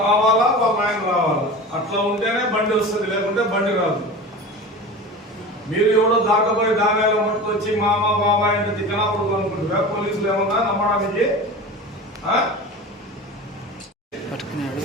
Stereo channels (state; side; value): normal; both; correlation 0.32